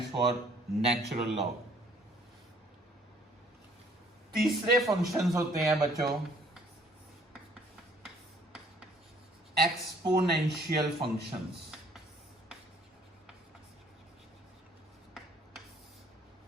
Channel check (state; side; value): normal; both; correlation 0.60